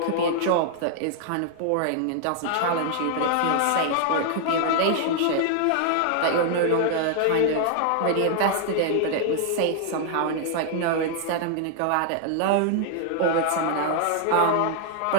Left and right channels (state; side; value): different; both; correlation 0.00